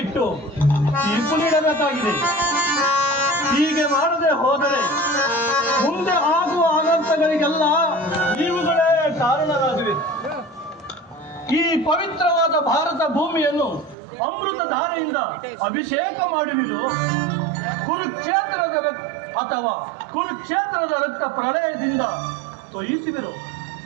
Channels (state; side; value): drops out; left; at 14.0 s